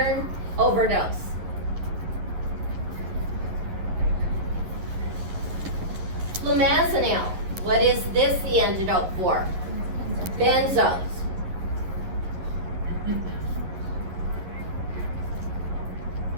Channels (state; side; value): late; left; 11 ms